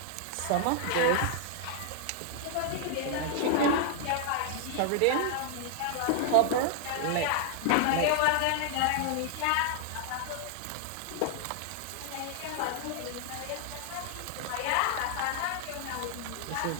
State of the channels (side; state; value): both; different; correlation -0.01